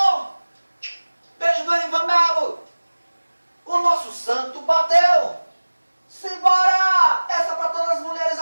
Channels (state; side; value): inverted; both; correlation -1.00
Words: Beijo do Erivan Melo. O nosso santo bateu. Simbora! Essa pra todas as mulheres